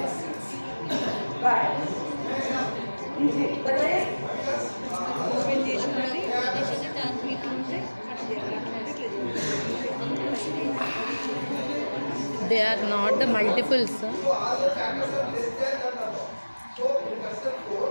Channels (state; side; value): inverted; both; correlation -1.00